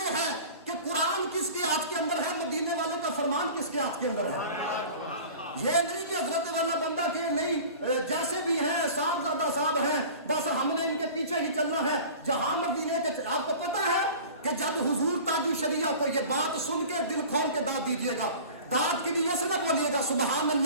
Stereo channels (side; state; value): both; inverted; correlation -0.40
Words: ہے کہ قرآن کس کے ہاتھ کے اندر ہے, مدینے والے کا فرمان کس کے ہاتھ کے اندر ہے. یہ نہیں کہ حضرت والا بندہ کہ نہیں جیسے بھی ہیں صاحب زادہ صاحب ہیں بس ہم نے ان کے پیچھے ہی چلنا ہے. جہاں مدینے کے آپ کو پتا ہے کہ جب حضور تاج الشریعہ کو یہ بات سن کے دل کھول کے داد دیجئے گا, داد کی نیت سے نہ بولیے گا سبحان